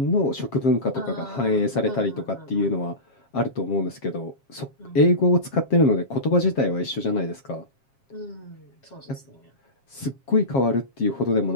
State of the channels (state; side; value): late; right; 7.4 ms